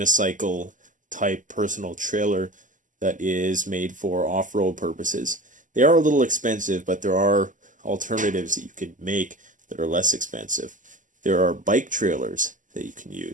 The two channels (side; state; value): left; late; 0.37 ms